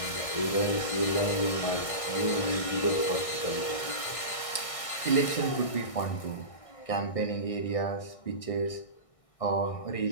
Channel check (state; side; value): late; right; 1.6 ms